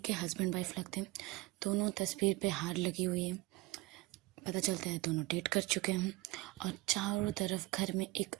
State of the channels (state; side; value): quieter; left; 21.2 dB